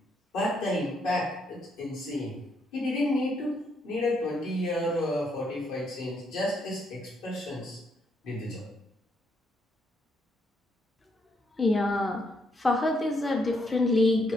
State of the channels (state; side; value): normal; both; correlation 0.75